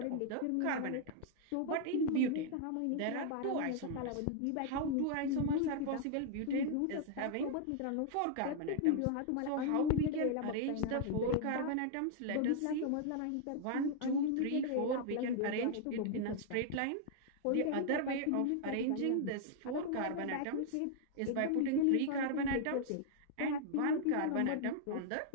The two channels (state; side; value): different; both; correlation -0.01